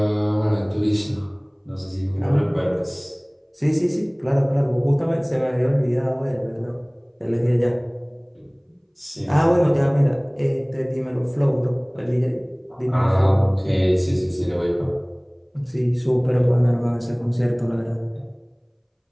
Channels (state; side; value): identical; both; correlation 1.00